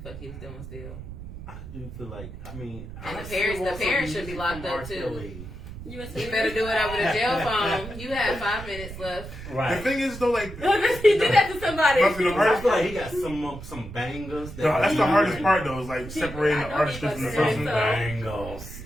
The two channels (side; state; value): right; noise; rumble, 12 dB below the sound